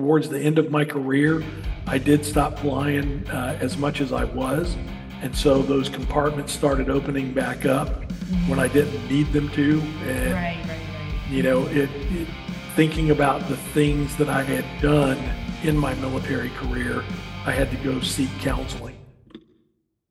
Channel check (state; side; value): identical; both; correlation 1.00